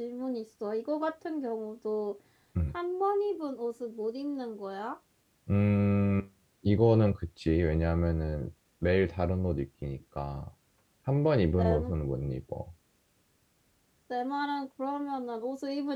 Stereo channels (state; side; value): identical; both; correlation 1.00